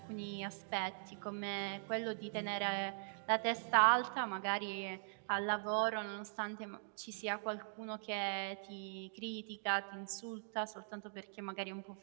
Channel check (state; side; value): silent; left; digital silence